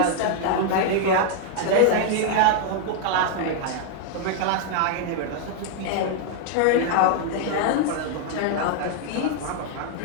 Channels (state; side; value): different; both; correlation 0.00